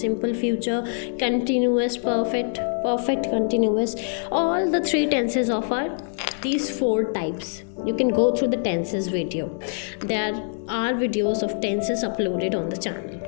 future, continuous, perfect, perfect continuous. All the three tenses of these four types. You can go through the tenses video. There are videos of tenses uploaded on the channel.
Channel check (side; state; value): right; silent; digital silence